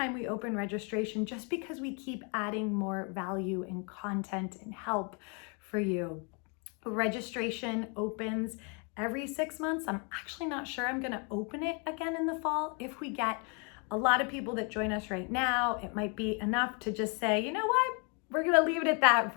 we open registration, just because we keep adding more value and content and help for you. Registration opens every 6 months. I'm actually not sure I'm gonna open it again in the fall. If we get a lot of people that join us right now, it might be enough to just say, you know what, we're gonna leave it at that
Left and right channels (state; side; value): quieter; right; 35.4 dB